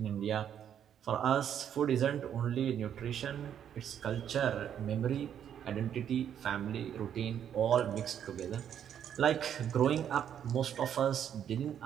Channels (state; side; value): quieter; left; 9.3 dB